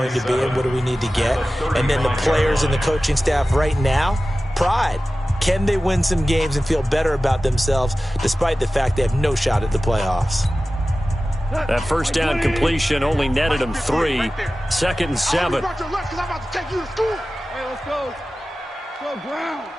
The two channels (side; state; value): both; normal; correlation 0.96